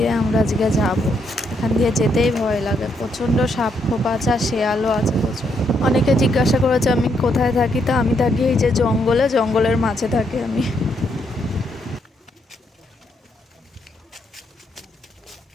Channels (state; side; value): normal; both; correlation 0.76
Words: আমরা আজকে যাব। এখান দিয়ে যেতেই ভয় লাগে, প্রচণ্ড সাপ খোপ আছে আর শেয়ালও আছে প্রচুর। অনেকে জিজ্ঞাসা করেছে আমি কোথায় থাকি, তো আমি থাকি এই যে জঙ্গলে, জঙ্গলের মাঝে থাকি আমি।